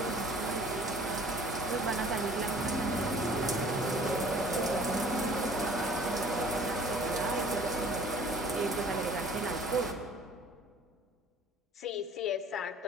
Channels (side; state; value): both; normal; correlation 0.51